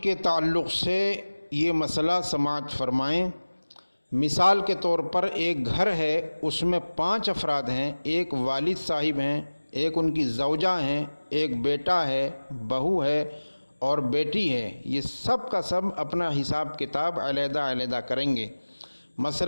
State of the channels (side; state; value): both; inverted; correlation -1.00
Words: تعلق سے یہ مسئلہ سماعت فرمائیں۔ مثال کے طور پر ایک گھر ہے، اس میں 5 افراد ہیں، ایک والد صاحب ہیں، ایک ان کی زوجہ ہیں، ایک بیٹا ہے، بہو ہے اور بیٹی ہے۔ یہ سب کا سب اپنا حساب کتاب علیحدہ علیحدہ کریں گے۔